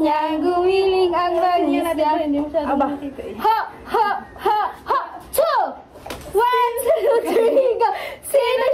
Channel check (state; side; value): identical; both; correlation 1.00